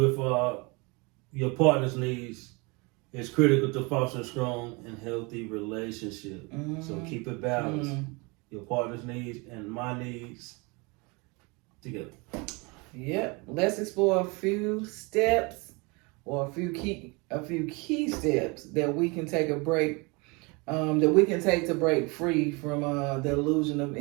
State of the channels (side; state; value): left; quieter; 28.3 dB